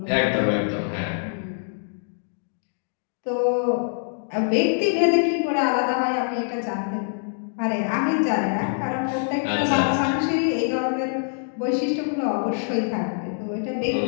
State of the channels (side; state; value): right; silent; digital silence